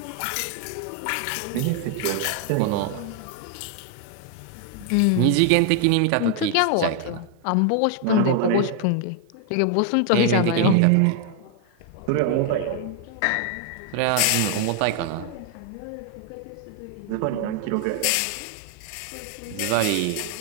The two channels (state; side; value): different; both; correlation 0.00